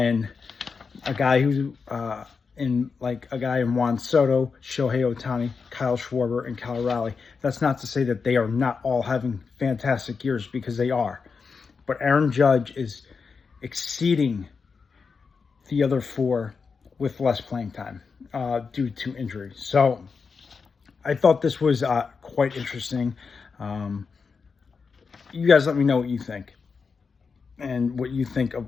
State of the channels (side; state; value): right; quieter; 5.2 dB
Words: a guy who in Juan Soto, Shohei Ohtani, Kyle Schwarber, and Cal Raleigh. That's not to say that they are not all having fantastic years, because they are. But Aaron Judge is exceeding the other 4 with less playing time due to injury. So I thought this was quite interesting. You guys let me know what you think, and what you think of